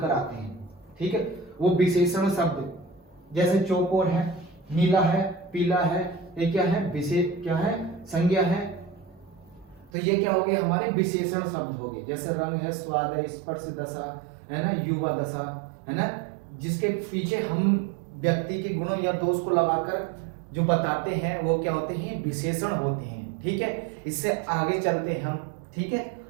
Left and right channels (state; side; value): drops out; left; at 9.9 s